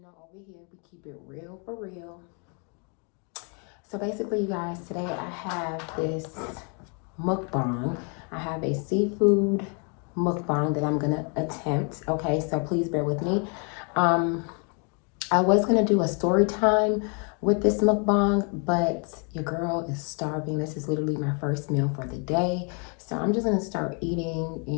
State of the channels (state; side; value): quieter; right; 37.6 dB